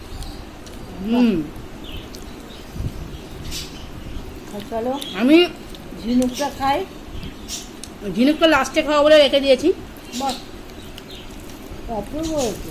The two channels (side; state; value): both; identical; correlation 1.00